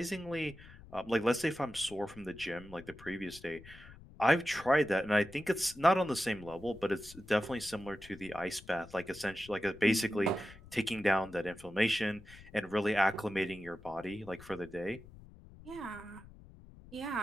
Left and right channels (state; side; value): noise; left; rumble, 19 dB below the sound